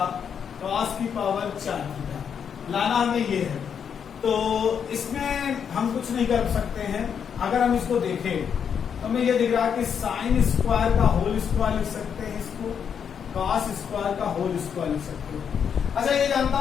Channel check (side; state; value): right; quieter; 7.5 dB